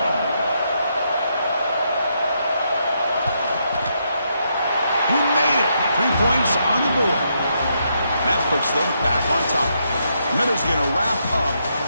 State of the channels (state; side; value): inverted; both; correlation -0.78